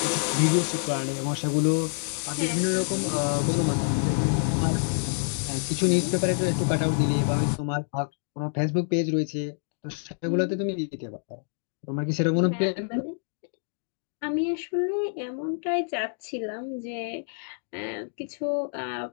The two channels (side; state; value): right; silent; digital silence